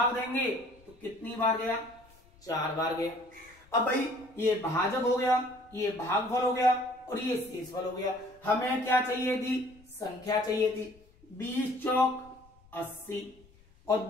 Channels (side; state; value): left; noise; rumble, 28 dB below the sound